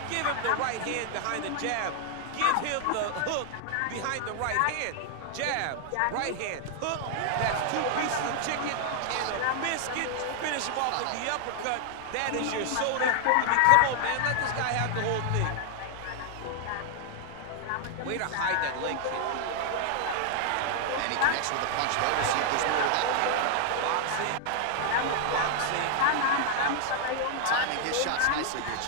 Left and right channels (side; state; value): both; different; correlation 0.00